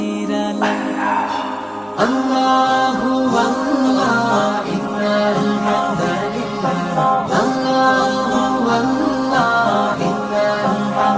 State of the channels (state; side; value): identical; both; correlation 1.00